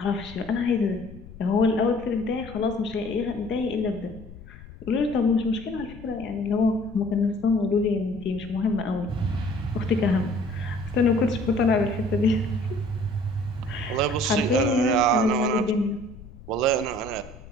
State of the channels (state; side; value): noise; left; rumble, 17 dB below the sound